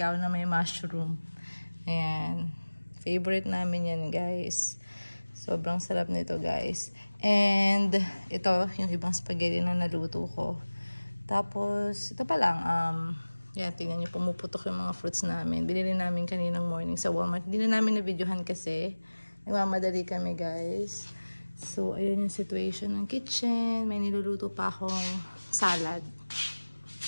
na may mushroom. Ayan. Favorite namin yan, guys. Sobrang sarap nito, guys. And, ito, yung ibang spaghetti na naluto ko. Tapos, ito pa lang. Yan, tingnan nyo, pumuputok yung mga fruits namin. Binili namin kaninang morning sa Walmart. Hindi na namin na-videohan kasi. Nagmamadali kami, guys. So, ayan yung situation ng kitchen. May niluluto pa akong salad.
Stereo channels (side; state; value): both; inverted; correlation -1.00